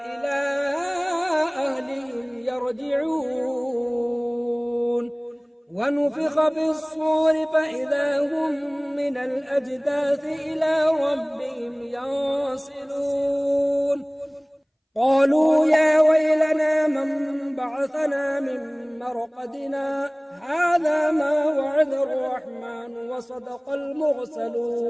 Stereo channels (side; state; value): both; identical; correlation 1.00